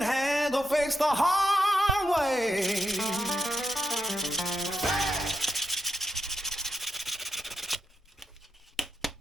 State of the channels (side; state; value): both; normal; correlation 0.84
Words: handle fix the hard way.